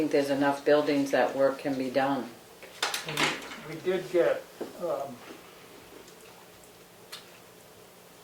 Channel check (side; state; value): both; identical; correlation 1.00